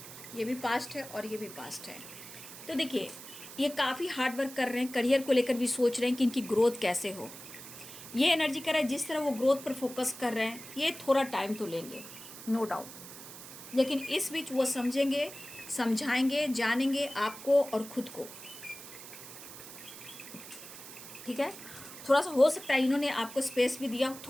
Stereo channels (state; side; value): noise; right; hiss, 14 dB below the sound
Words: ये भी पास्ट है और ये भी पास्ट है। तो देखिए ये काफ़ी हार्ड वर्क कर रहे हैं, करियर को लेकर भी सोच रहे हैं कि इनकी ग्रोथ कैसे हो। ये एनर्जी कर रहा है, जिस तरह वो ग्रोथ पर फोकस कर रहे हैं, ये थोड़ा टाइम तो लेंगे नो डाउट, लेकिन इस बीच वो समझेंगे, समझाएंगे, जानेंगे आपको और खुद को, ठीक है। थोड़ा सा हो सकता है इन्होंने आपको स्पेस भी दिया,